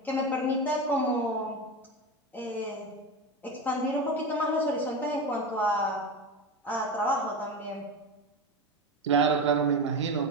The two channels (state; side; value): normal; both; correlation 0.21